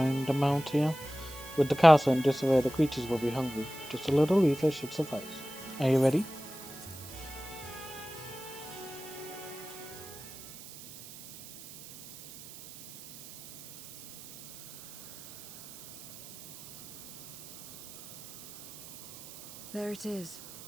a mount here. With the castle in disarray, the creatures will be hungry. Just a little ether should suffice. Are you ready? There it is.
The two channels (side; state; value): right; noise; hiss, 16 dB below the sound